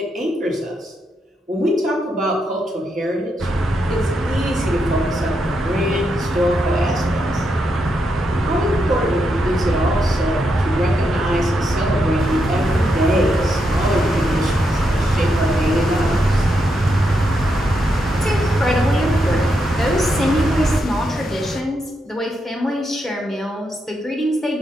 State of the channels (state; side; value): normal; both; correlation 0.82